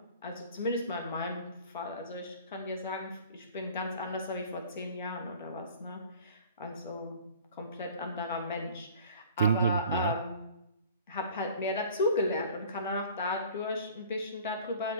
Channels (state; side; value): inverted; both; correlation -0.47